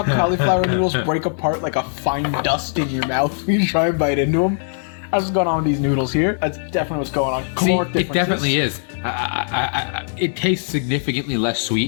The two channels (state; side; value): silent; right; digital silence